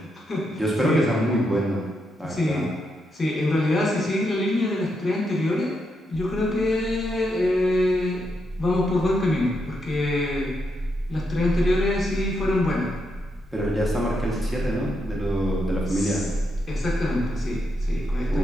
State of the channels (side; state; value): both; normal; correlation 0.82